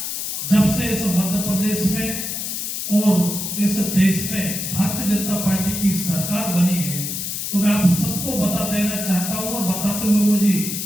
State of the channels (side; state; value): left; noise; hiss, 4 dB below the sound